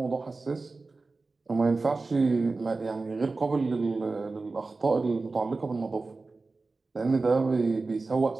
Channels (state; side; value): quieter; left; 3.7 dB